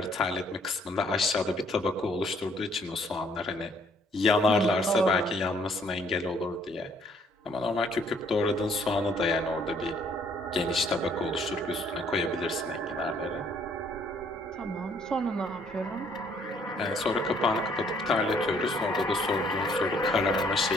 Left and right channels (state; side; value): normal; both; correlation 0.64